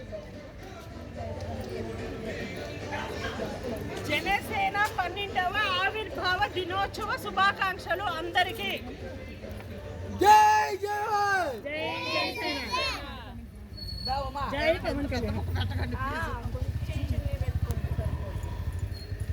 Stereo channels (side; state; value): both; identical; correlation 1.00